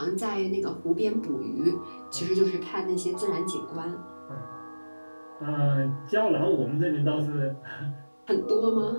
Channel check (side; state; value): both; inverted; correlation -1.00